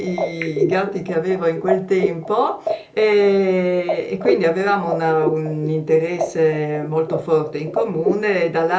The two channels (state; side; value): identical; both; correlation 1.00